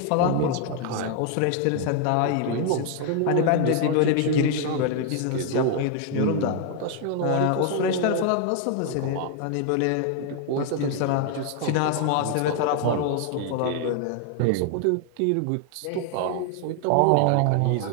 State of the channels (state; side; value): different; both; correlation 0.00